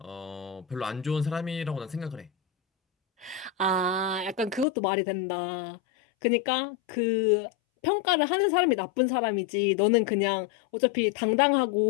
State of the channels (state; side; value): drops out; right; at 4.7 s